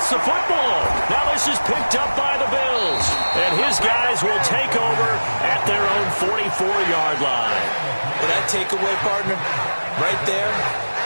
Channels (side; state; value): both; inverted; correlation -1.00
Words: the football. Now this is picked up by the Bills. And his guys will take over at their own 44-yard line. Well, that takeaway, partner, right there,